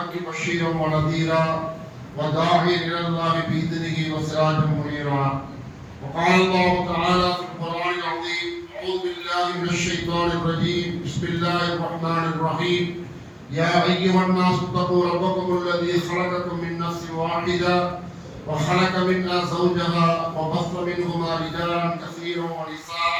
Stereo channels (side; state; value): both; identical; correlation 1.00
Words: بشيرا ونذيرا وداعيا إلى الله بإذنه وسراجا منيرا وقال الله تعالى في القرآن العظيم أعوذ بالله من الشيطان الرجيم بسم الله الرحمن الرحيم يا أيها الناس اتقوا ربكم الذي خلقكم من نفس واحدة وخلق منها زوجها وبث منهما رجالا كثيرا